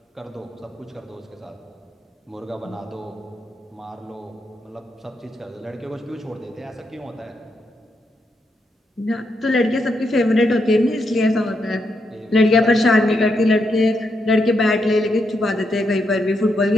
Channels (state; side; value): normal; both; correlation 0.81